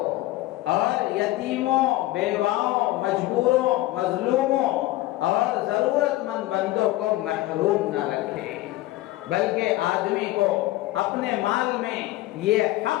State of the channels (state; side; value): quieter; right; 17.3 dB